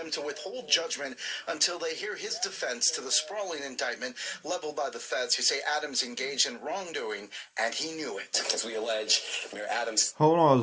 to withhold judgment until they hear his defense to the sprawling indictment leveled by the feds, who say Adams engaged in wrongdoing and he knew it. As we allege, Mayor Adams. Hold on,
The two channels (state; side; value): identical; both; correlation 1.00